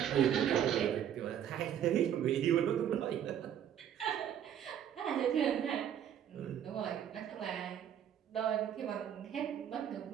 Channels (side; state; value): left; quieter; 9.8 dB